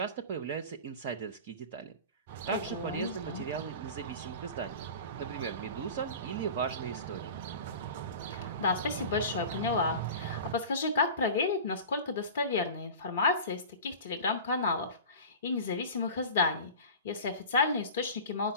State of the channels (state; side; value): inverted; both; correlation -0.35